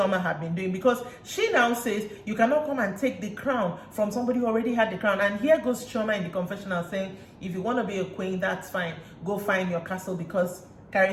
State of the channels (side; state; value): both; identical; correlation 1.00